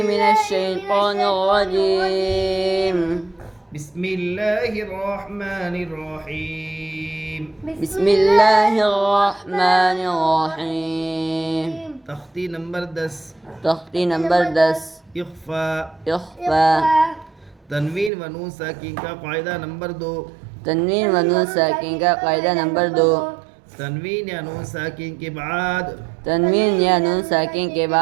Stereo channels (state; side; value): drops out; left; at 18.1 s